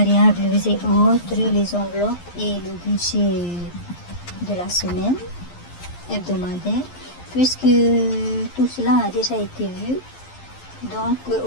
et autres, les enveloppes et le budget de la semaine hebdomadaire, puisque tout cela a déjà été vu donc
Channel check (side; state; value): right; late; 11 ms